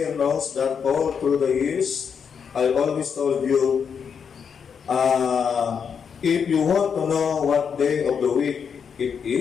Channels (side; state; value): right; quieter; 6.8 dB